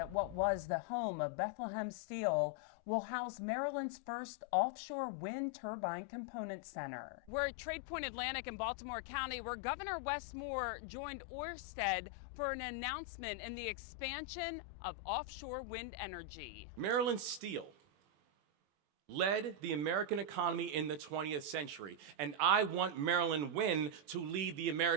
what was the home of Bethlehem Steel will house Maryland's first offshore wind turbine component center. We're at Tradepoint Atlantic in Baltimore County, where Governor Wes Moore joined Ørsted for an announcement in the expansion of offshore wind energy. Maryland Steel led the American economy in the 20th century, and I want Maryland Wind to lead the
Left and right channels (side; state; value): left; late; 21 ms